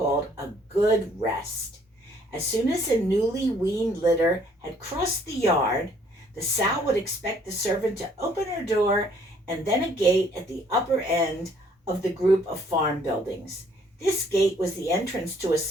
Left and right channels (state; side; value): normal; both; correlation 0.62